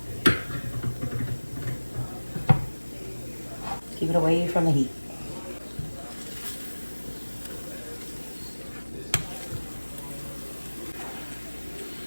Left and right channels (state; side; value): inverted; both; correlation -1.00